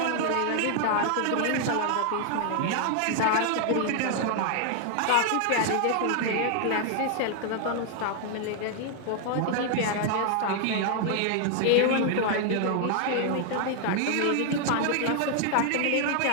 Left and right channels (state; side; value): different; both; correlation 0.00